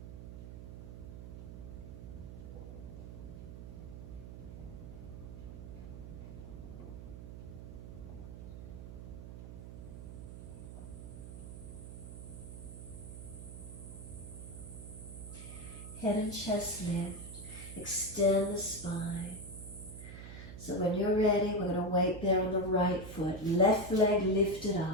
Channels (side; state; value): right; noise; hum, 10 dB below the sound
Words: Head and chest lift, extend the spine. So when you're ready, we're going to wait there on the right foot. Left leg lifted